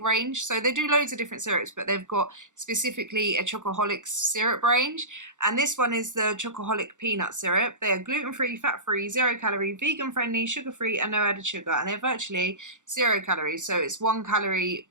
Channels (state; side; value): late; left; 0.86 ms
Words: So they do loads of different syrups, but they've got specifically a Chocoholic syrup range, and this one is the Chocoholic peanut syrup. They are gluten-free, fat-free, 0 calorie, vegan-friendly, sugar-free, and no added sugar, and they're virtually 0 calories. So it's 1 calorie